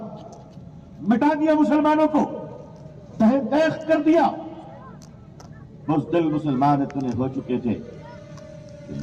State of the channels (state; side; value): identical; both; correlation 1.00